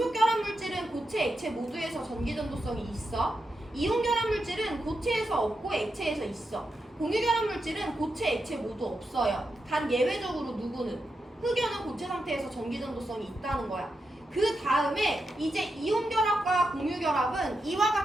결합 물질은 고체, 액체 모두에서 전기전도성이 있어. 이온 결합 물질은 고체에서 없고 액체에서 있어. 공유 결합 물질은 고체, 액체 모두 없어요. 단 예외적으로 누구는? 흑연은 고체 상태에서 전기전도성이 있다는 거야. 그 다음에 이제 이온 결합과 공유 결합은 이와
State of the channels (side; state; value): both; normal; correlation 0.87